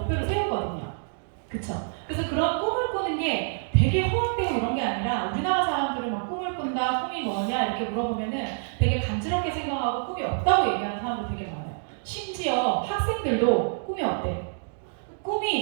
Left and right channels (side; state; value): left; silent; digital silence